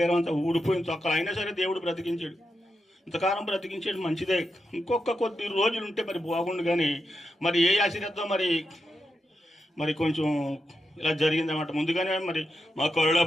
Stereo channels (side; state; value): both; normal; correlation 0.87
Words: అంతా ఊడిపోయిన తొక్కలు అయినా సరే దేవుడు బ్రతికించాడు. ఇంతకాలం బ్రతికించాడు, మంచిదే. ఇంకొక కొద్ది రోజులు ఉంటే మరి బాగుండు. కానీ మరి ఏ ఆశీర్వాదం మరి కొంచెం ఇలా జరిగిందన్నమాట. ముందుగానే మరి మా కరుళ